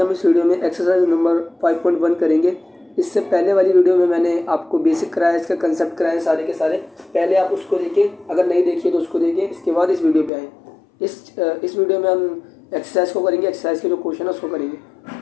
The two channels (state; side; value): drops out; right; at 10.3 s